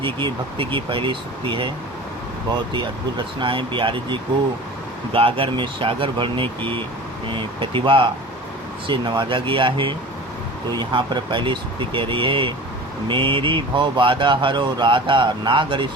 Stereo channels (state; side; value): normal; both; correlation 0.38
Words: की भक्ति की पहली स्तुति है। बहुत ही अद्भुत रचना है। बिहारी जी को गागर में सागर भरने की प्रतिभा से नवाजा गया है। तो यहाँ पर पहली स्तुति कह रही है, मेरी भव बाधा हरो राधा नागर